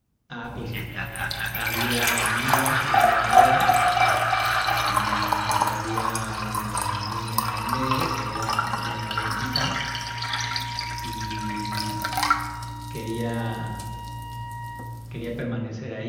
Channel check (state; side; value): identical; both; correlation 1.00